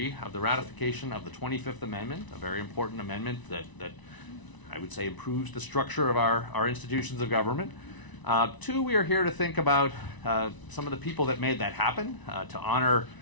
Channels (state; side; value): late; right; 1.0 ms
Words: of the ratification of the 25th Amendment, a very important amendment that I would say improves the structure of our institutions of government. Two, we are here to think about some of the people that made that happen, to honor